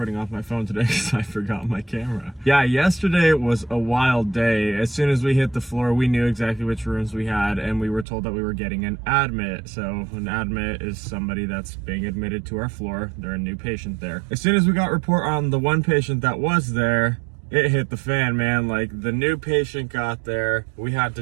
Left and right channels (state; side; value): drops out; left; at 8.1 s